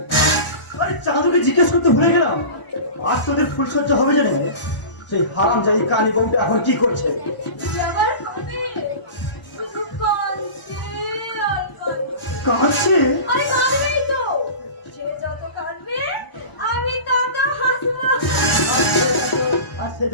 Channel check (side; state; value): right; late; 1.0 ms